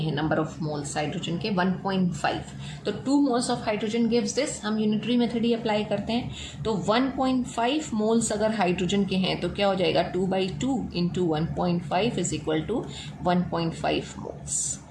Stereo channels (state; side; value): identical; both; correlation 1.00